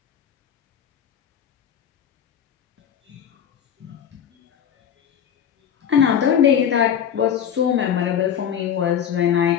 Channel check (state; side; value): quieter; right; 8.8 dB